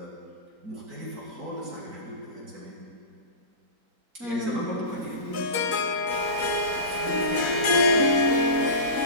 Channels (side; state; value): left; late; 4.1 ms